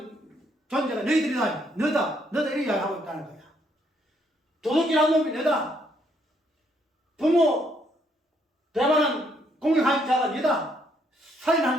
존재가 너희들이다. 너다 이렇게 이야기하고 있다는 거야. 도둑질한 놈이 너다. 부모 배반한 공격한 자가 너다.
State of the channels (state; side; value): normal; both; correlation 0.71